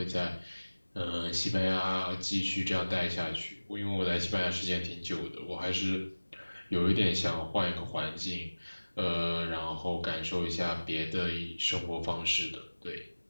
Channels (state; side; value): inverted; both; correlation -1.00